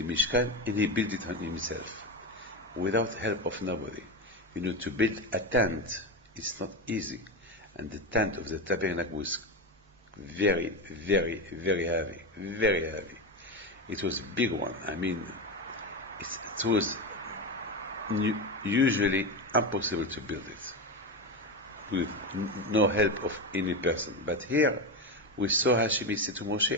Mishkan and he built it on himself, without help of nobody. To build a tent, it's not easy, and the tent of the tabernacle was very, very, very heavy, very heavy. It was a big one. It was usually impossible to build it with no help of any person. But here we saw Hashem say to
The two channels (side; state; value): both; normal; correlation 0.16